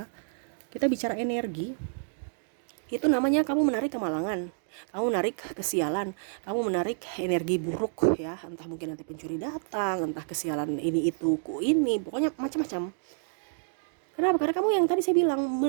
kita bicara energi, itu namanya kamu menarik kemalangan, kamu menarik kesialan, kamu menarik energi buruk ya, entah mungkin nanti pencuri datang, entah kesialan ini itu pokoknya macam-macam. Kenapa? Karena kamu yang tadi saya bilang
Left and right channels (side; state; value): left; silent; digital silence